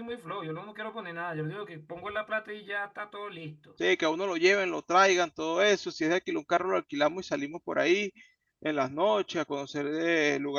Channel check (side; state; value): both; identical; correlation 1.00